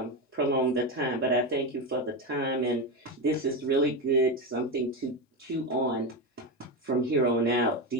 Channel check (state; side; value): normal; both; correlation 0.14